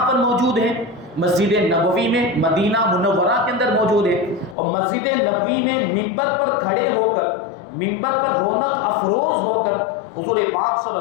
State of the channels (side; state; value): right; drops out; at 4.5 s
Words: پر موجود ہیں؟ مسجد نبوی میں، مدینہ منورہ کے اندر موجود ہے، اور مسجد نبوی میں منبر پر کھڑے ہو کر، منبر پر رونق افروز ہو کر حضور پاک صلی